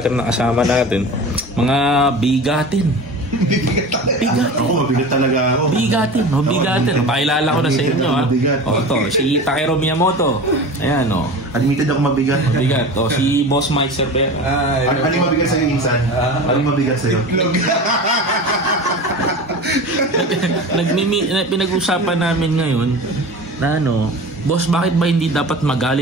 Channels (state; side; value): normal; both; correlation 0.33